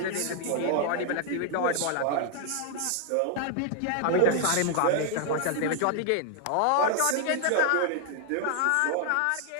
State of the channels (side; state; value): both; different; correlation 0.00